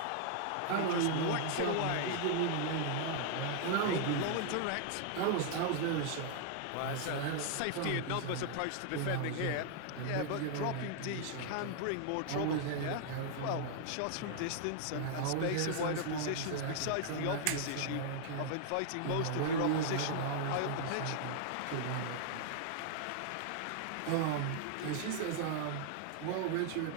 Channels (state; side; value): different; both; correlation 0.00